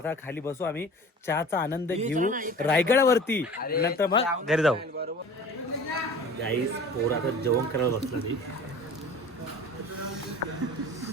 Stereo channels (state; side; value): normal; both; correlation 0.42